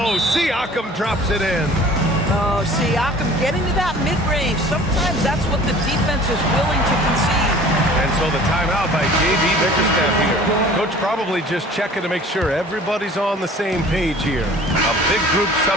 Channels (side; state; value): both; normal; correlation 0.47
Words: Siakam drops it in. Oh, Siakam getting to that mid-range. Sometimes that's what the defense is willing to concede. And so the timeout by J.B. Bickerstaff here. Coach probably just checking to make sure everybody's on the same page here. A big group